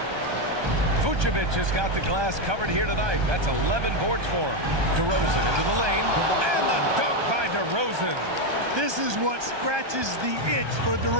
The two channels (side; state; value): left; late; 1.2 ms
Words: Vucevic has got the glass covered here tonight. That's 11 boards for him. DeRozan into the lane. And the dunk by DeRozan. This is what scratches the itch for